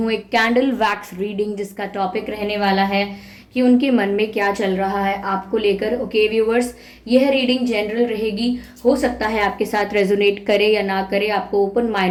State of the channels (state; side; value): identical; both; correlation 1.00